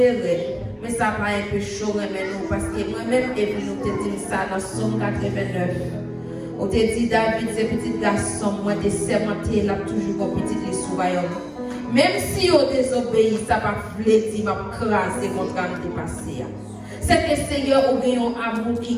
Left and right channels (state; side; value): identical; both; correlation 1.00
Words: Mais ça va un peu chaud, mais nous, parce que moi-même, et puis nous te disons ça dans Somme 89. On te dit, David, ce petit garçon, moi, des sermentés, là, toujours comme petit les sous-royaume. Même si on désobéit, ça va flétir, va craser contre un dépassé. C'est que Seigneur, on a un amour qui